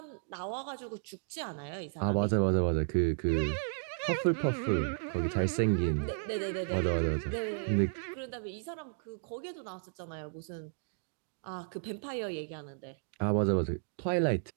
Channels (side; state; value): left; silent; digital silence